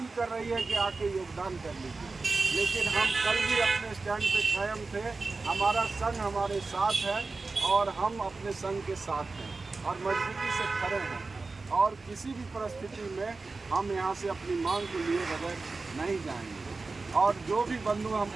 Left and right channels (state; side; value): quieter; left; 3.8 dB